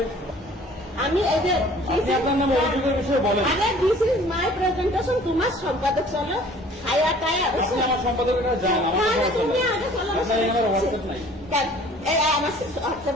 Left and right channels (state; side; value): normal; both; correlation 0.51